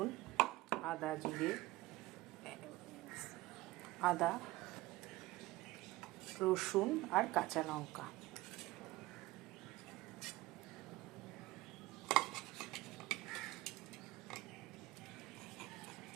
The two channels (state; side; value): quieter; left; 18.8 dB